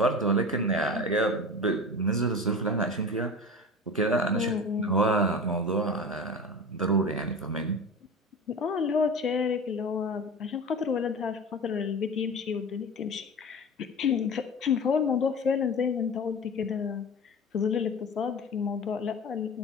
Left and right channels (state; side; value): normal; both; correlation 0.32